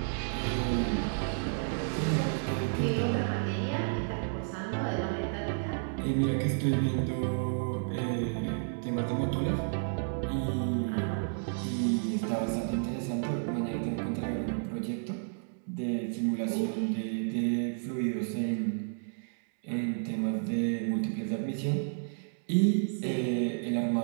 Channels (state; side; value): silent; left; digital silence